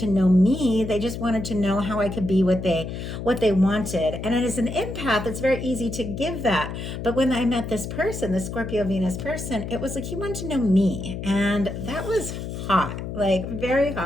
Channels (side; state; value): left; noise; hum, 7 dB below the sound